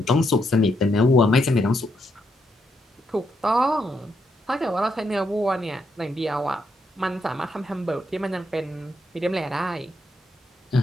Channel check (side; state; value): both; normal; correlation 0.79